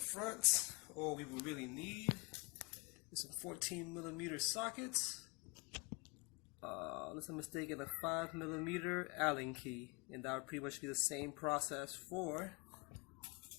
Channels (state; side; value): quieter; right; 30.0 dB